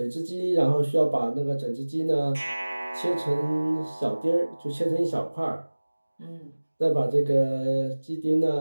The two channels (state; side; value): inverted; both; correlation -1.00